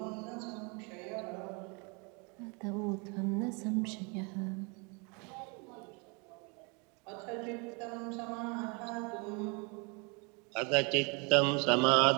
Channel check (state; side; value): quieter; left; 32.3 dB